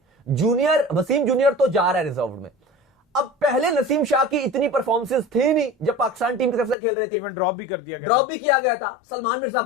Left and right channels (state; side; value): drops out; right; at 6.8 s